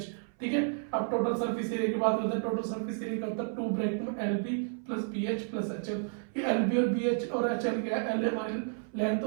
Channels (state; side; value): silent; left; 57 dB below the other